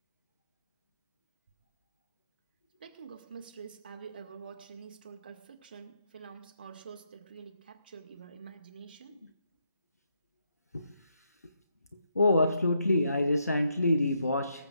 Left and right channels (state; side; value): inverted; both; correlation -0.78